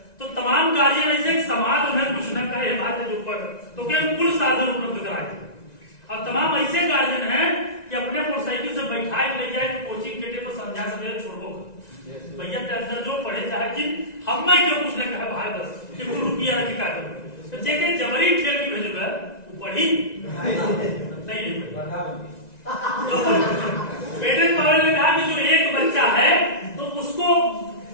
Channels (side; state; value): right; late; 1.9 ms